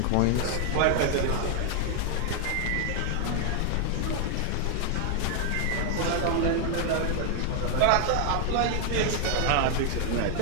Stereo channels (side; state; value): both; different; correlation 0.00